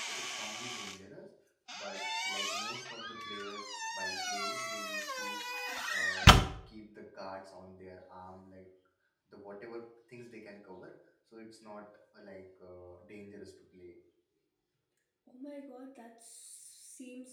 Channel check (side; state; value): both; identical; correlation 1.00